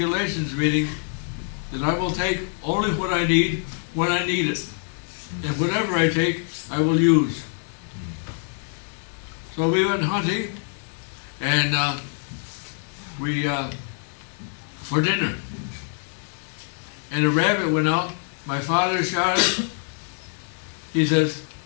meaning that I will take only what I need when I need it, and whatever I take, I will use. So we went hunting, and for dinner. And a rabbit went out. My father shot it. He says,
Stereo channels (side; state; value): right; silent; 55 dB below the other